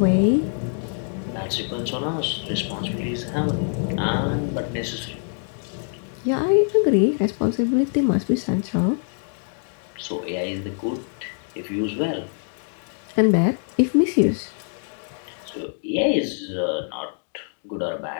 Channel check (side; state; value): right; silent; 62 dB below the other